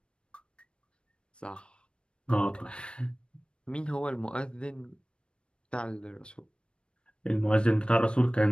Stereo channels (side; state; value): right; late; 0.056 ms